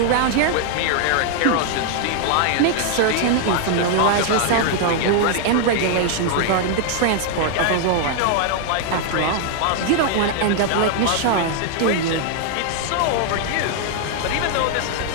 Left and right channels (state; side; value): different; both; correlation 0.00